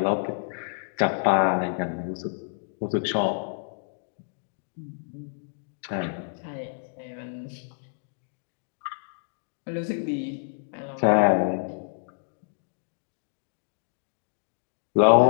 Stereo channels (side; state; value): right; silent; digital silence